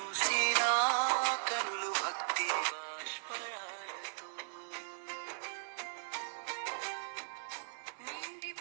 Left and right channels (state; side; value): silent; left; 53 dB below the other